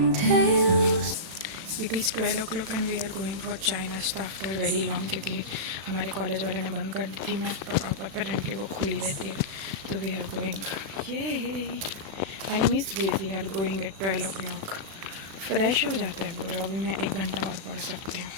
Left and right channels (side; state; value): left; late; 35 ms